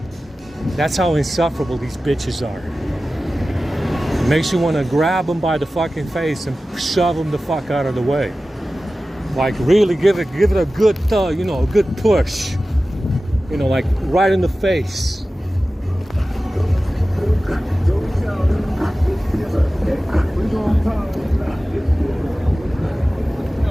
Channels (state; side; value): normal; both; correlation 0.95